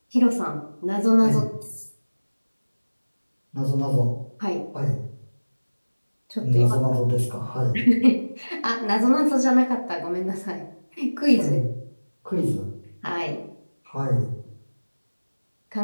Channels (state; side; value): inverted; both; correlation -1.00